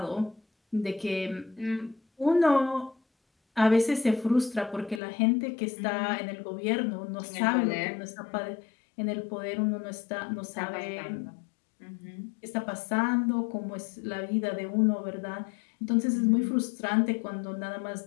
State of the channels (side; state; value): right; drops out; at 5.0 s